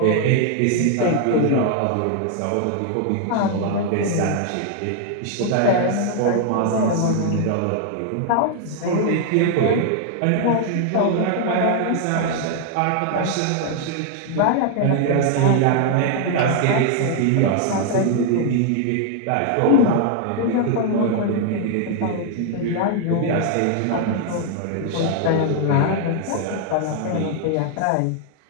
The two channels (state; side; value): different; both; correlation 0.00